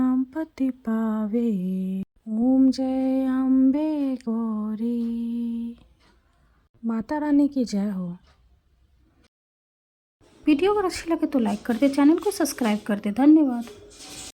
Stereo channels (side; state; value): both; identical; correlation 1.00